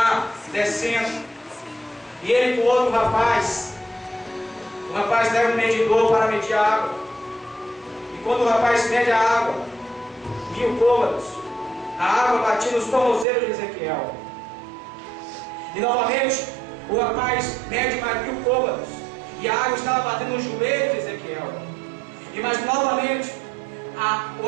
descendo, e ele com outro rapaz. O rapaz leva um medidor para medir a água. E quando o rapaz mede a água, 1000 côvados, a água batia nos tornozelos de Ezequiel. E novamente o rapaz mede mais 1000 côvados, e a água estava batendo nos joelhos de Ezequiel. E mais novamente o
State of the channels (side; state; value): left; drops out; at 13.2 s